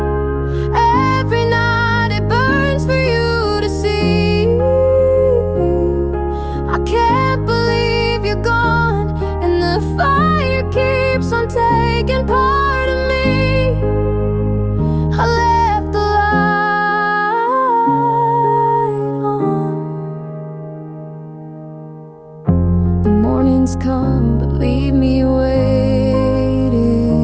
every night, it burns for you to see. I can't believe you're gone, and the fire keeps on taking part of me. I left the light on. The mornings come but leave me waiting.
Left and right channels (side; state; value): both; identical; correlation 1.00